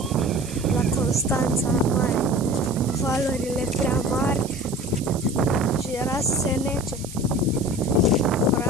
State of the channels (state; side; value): noise; right; hiss, 14 dB below the sound